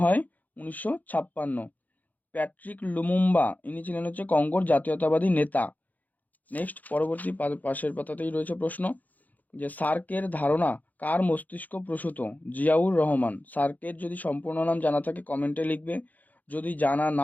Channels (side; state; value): right; late; 0.081 ms